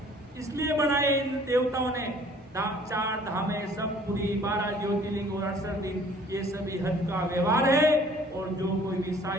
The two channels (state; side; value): normal; both; correlation 0.54